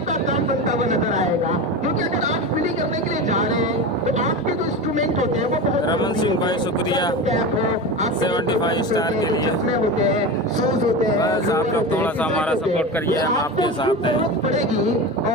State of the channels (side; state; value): both; normal; correlation 0.25